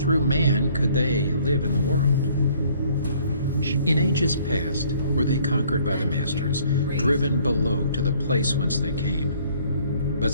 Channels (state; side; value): inverted; both; correlation -0.59